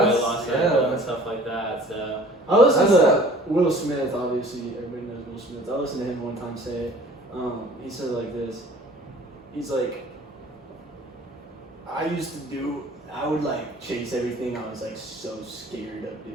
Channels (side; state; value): both; normal; correlation 0.49